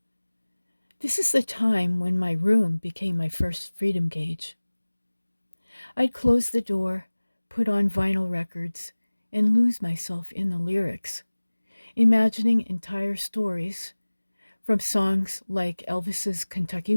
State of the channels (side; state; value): both; inverted; correlation -1.00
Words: This is the time when my room became my first freedom gauge. I'd close the door, put on vinyl records, and lose myself in the lyrics, imagining entire stories from songs like Elvis's Kentucky